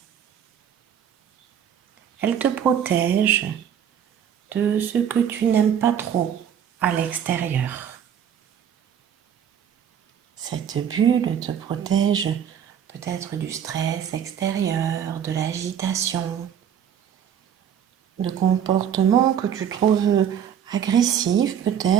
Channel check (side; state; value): left; quieter; 8.8 dB